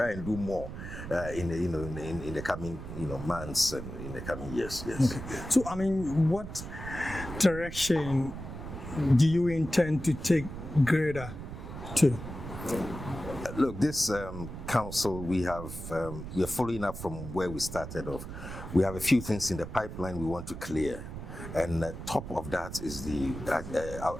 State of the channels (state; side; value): noise; right; rumble, 9 dB below the sound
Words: and do more in the coming months and in the coming years. Yes. Okay. So I mean, what direction do you intend to take GREDA to? Look, this council, we are following up from where we started off. We have a few things in the pipeline we want to clear, and top of that is the